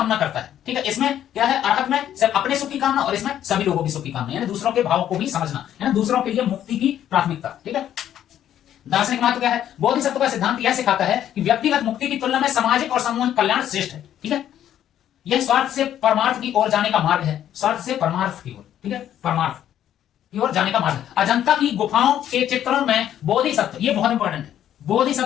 करता है। ठीक है, इसमें क्या है? अरहत में सिर्फ अपने सुख की कामना और इसमें सभी लोगों की सुख की कामना, यानी दूसरों के भाव को भी समझना, यानी दूसरों के लिए मुक्ति की प्राथमिकता। ठीक है, दार्शनिक महत्व क्या है? बोधिसत्व का सिद्धांत यह सिखाता है कि व्यक्तिगत मुक्ति की तुलना में सामाजिक और सामूहिक कल्याण श्रेष्ठ है। ठीक है, यह स्वार्थ से परमार्थ की ओर जाने का मार्ग है, स्वार्थ से परमार्थ की ओर। ठीक है, परमार्थ की ओर जाने का मार्ग है। अजंता की गुफाओं के चित्रों में बोधिसत्व, ये बहुत इंपॉर्टेंट है,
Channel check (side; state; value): right; quieter; 10.9 dB